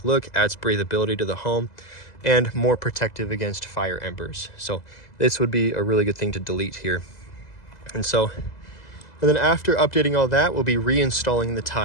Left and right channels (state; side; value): late; right; 2.0 ms